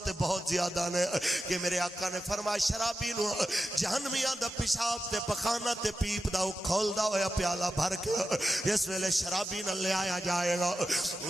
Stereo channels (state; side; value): normal; both; correlation 0.91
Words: بہت زیادہ نے کہ میرے آقا نے فرمایا شرابی نو جہنمیاں دا پیشاب تے پخانہ تے پیپ دا کھول دا ہویا پیالہ بھر کے اس ویلے شرابی نہ لے آیا جائے گا